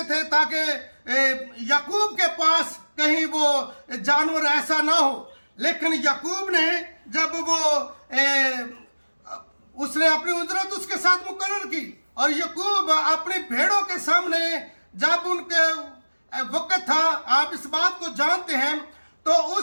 थे ताकि याकूब के पास कहीं वो जानवर ऐसा ना हो। लेकिन याकूब ने जब उसने अपनी उजरत उसके साथ मुकर्रर की, और याकूब अपनी भेड़ों के सामने जब उनके वक्त था, आप इस बात को जानते हैं, तो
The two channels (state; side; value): inverted; both; correlation -1.00